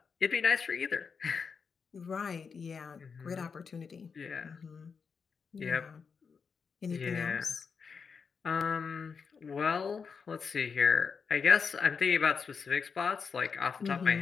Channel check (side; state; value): right; quieter; 5.7 dB